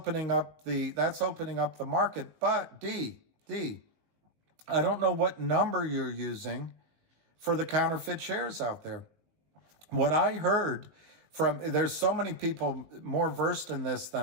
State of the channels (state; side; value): late; left; 19 ms